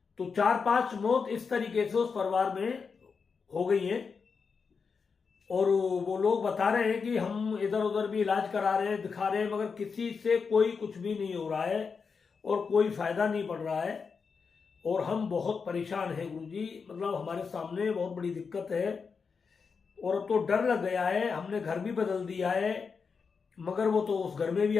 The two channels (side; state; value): right; quieter; 5.4 dB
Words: तो 4-5 मौत इस तरीके से उस परिवार में हो गई है। और वो लोग बता रहे हैं कि हम इधर उधर भी इलाज करा रहे हैं, दिखा रहे हैं, मगर किसी से कोई कुछ भी नहीं हो रहा है और कोई फायदा नहीं पड़ रहा है। और हम बहुत परेशान हैं गुरुजी, मतलब हमारे सामने बहुत बड़ी दिक्कत है और अब तो डर लग गया है। हमने घर भी बदल दिया है, मगर वो तो उस घर में भी